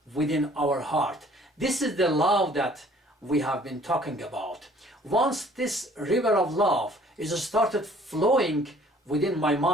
within our heart. This is the love that we have been talking about. Once this river of love is started flowing within my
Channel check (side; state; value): both; normal; correlation 0.56